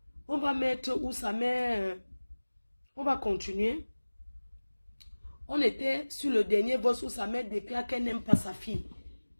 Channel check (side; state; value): both; inverted; correlation -1.00